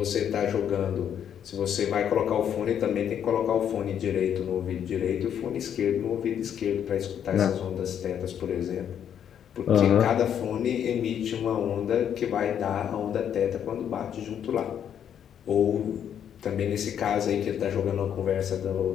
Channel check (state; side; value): quieter; right; 9.1 dB